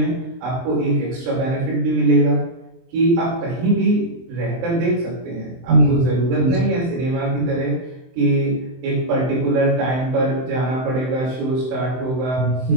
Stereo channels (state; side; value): late; left; 23 ms